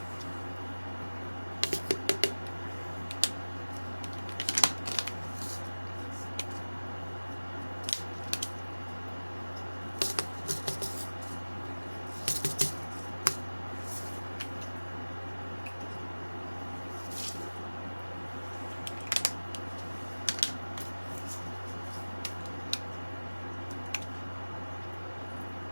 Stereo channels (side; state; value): both; inverted; correlation -1.00